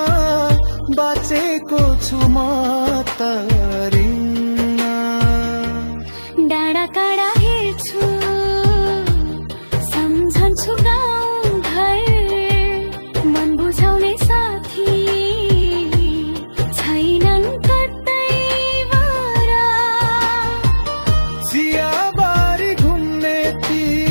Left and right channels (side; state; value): both; inverted; correlation -1.00